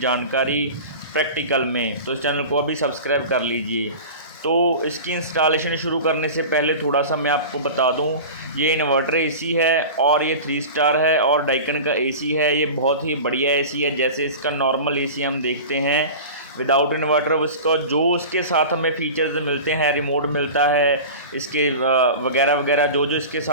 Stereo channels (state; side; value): inverted; both; correlation -0.33